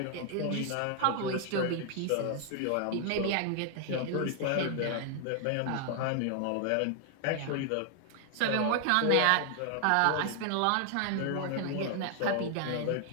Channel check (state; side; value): different; both; correlation 0.00